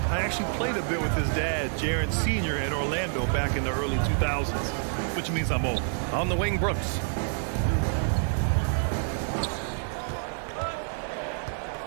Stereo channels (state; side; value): silent; left; digital silence